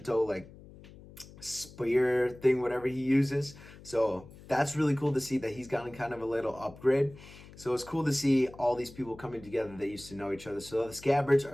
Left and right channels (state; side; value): noise; left; hum, 19 dB below the sound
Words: like spear thing, whatever he uses. So that's really cool to see that he's gotten kind of a little upgrade. So it's cool to see all these people coming together that used to know each other. So the scabbards